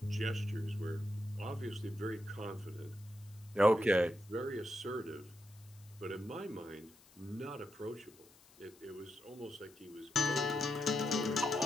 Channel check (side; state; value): left; noise; hiss, 25 dB below the sound